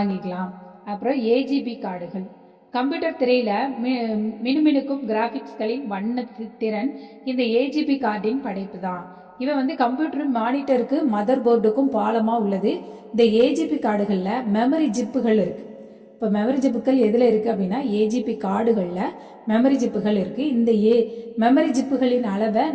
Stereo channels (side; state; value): both; identical; correlation 1.00